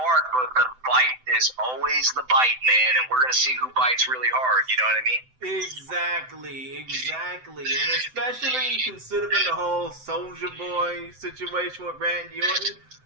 but the bite is always the bite, man. And we're going to see who bites really hard. You know what I mean? Exactly. And especially considering the whole Soulja Boy situation with Randy Orton,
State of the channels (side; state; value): left; late; 7.8 ms